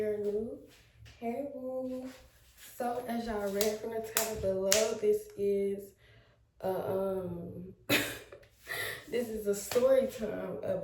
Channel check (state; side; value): identical; both; correlation 1.00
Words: new, hey boo. So as y'all read from the title below, this is this is a story time